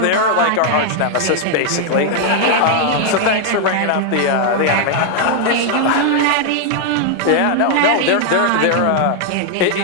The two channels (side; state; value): both; different; correlation 0.00